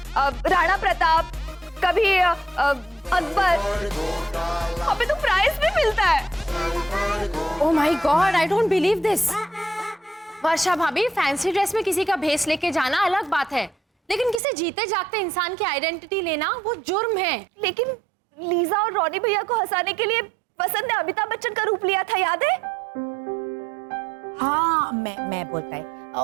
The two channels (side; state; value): left; drops out; at 14.4 s